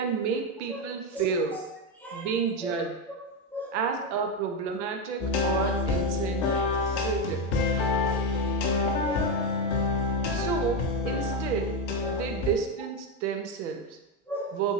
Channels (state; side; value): normal; both; correlation 0.09